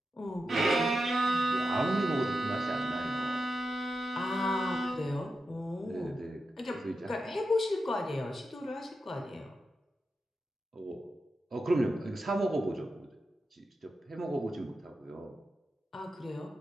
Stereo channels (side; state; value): both; normal; correlation 0.89